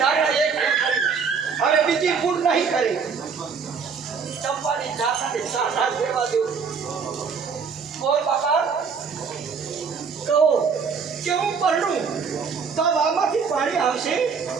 ધારણા એક કરી હવે બીજી ભૂલ નહીં કરી. ચંપાની ધારણાને સાચા દેવા દો. બોલ બાપા કહો કે હું પરણું તો આમાંથી પાણી આવશે?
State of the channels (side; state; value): left; quieter; 5.8 dB